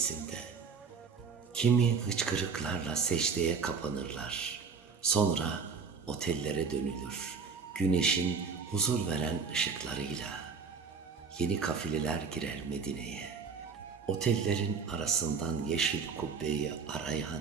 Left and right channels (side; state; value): left; quieter; 5.5 dB